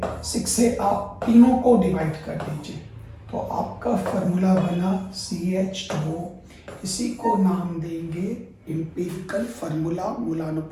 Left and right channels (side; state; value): both; identical; correlation 1.00